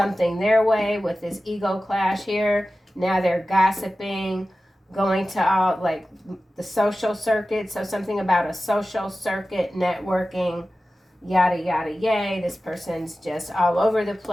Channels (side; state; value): both; normal; correlation 0.95